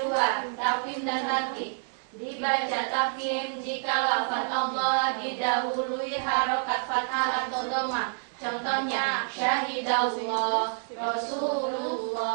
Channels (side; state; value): left; silent; digital silence